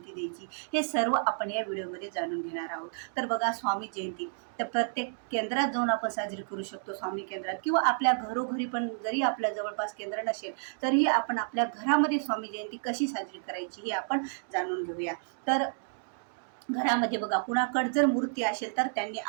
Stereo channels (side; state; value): left; silent; digital silence